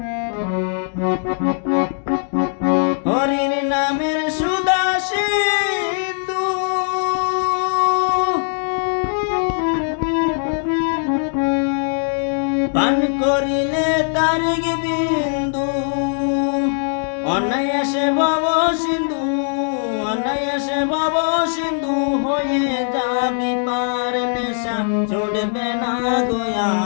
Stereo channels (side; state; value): right; silent; 62 dB below the other